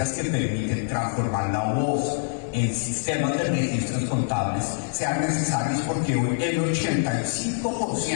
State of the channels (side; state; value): right; silent; digital silence